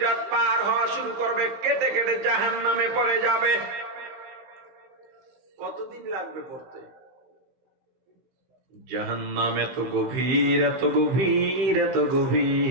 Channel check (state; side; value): late; left; 16 ms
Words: পার হওয়া শুরু করবে, কেটে কেটে জাহান্নামে পড়ে যাবে। কতদিন লাগবে পড়তে? জাহান্নাম এত গভীর, এত গভীর, এত